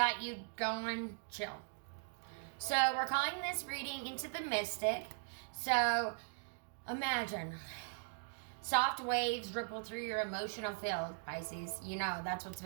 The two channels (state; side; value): silent; left; digital silence